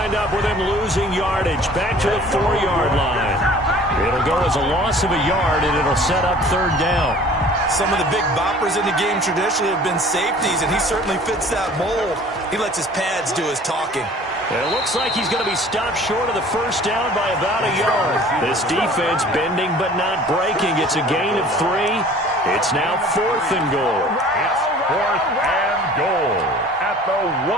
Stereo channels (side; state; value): both; normal; correlation 0.48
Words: up with him losing yardage back to the 4-yard line. It'll go as a loss of a yard, and it'll set up third down. Some of the big boppers in the game traditionally have been safeties, and he certainly fits that mold. He lets his pads do his talking. It looks like he's going to be stopped short of the first down by about a yard. This defense bending but not breaking. It's a gain of 3. It's now 4th and goal. It's 4th and goal at the